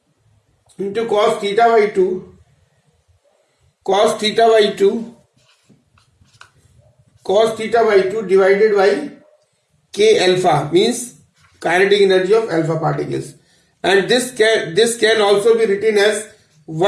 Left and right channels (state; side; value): identical; both; correlation 1.00